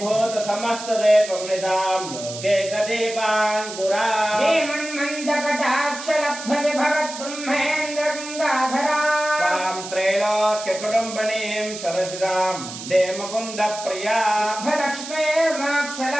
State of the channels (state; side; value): noise; right; hiss, 10 dB below the sound